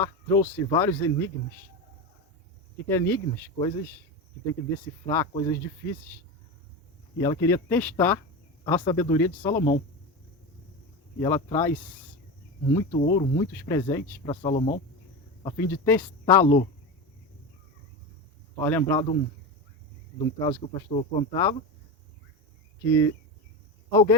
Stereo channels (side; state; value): both; normal; correlation 0.21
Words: trouxe vários enigmas. O que é enigmas? Coisas que tem que decifrar, coisas difíceis. E ela queria testar a sabedoria de Salomão. E ela traz muito ouro, muitos presentes para Salomão, a fim de testá-lo. Vai lembrar de um caso que o pastor contava, que